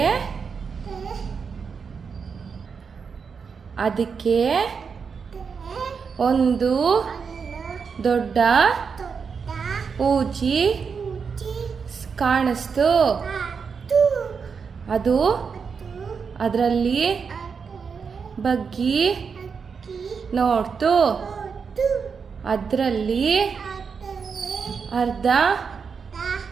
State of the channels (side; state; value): left; quieter; 5.8 dB